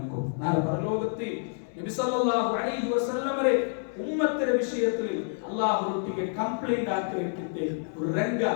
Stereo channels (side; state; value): right; silent; digital silence